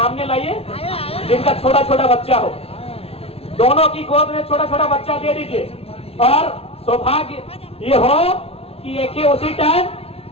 लाइए, जिनका छोटा छोटा बच्चा हो, दोनों की गोद में छोटा छोटा बच्चा दे दीजिए, और सौभाग्य ये हो कि एक ही उसी टाइम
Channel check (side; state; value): right; late; 0.29 ms